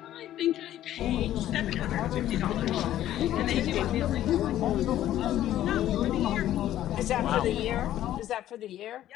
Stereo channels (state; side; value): quieter; right; 12.7 dB